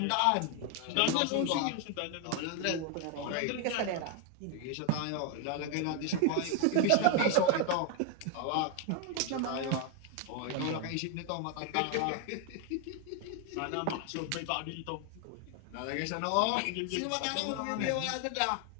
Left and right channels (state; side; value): different; both; correlation 0.01